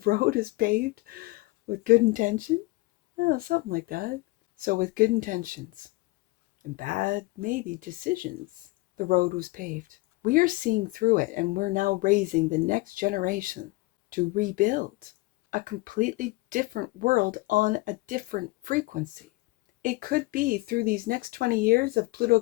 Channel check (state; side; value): quieter; right; 22.1 dB